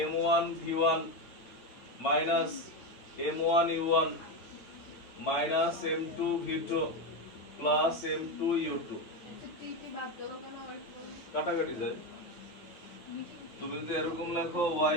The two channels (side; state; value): right; late; 8.9 ms